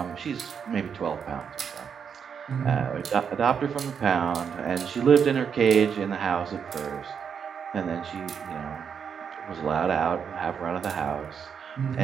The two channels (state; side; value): quieter; left; 7.1 dB